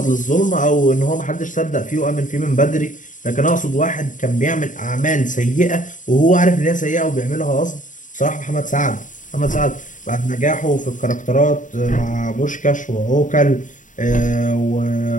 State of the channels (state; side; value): late; right; 0.37 ms